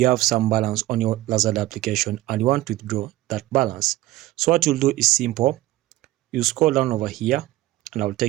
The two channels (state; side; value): quieter; left; 16.8 dB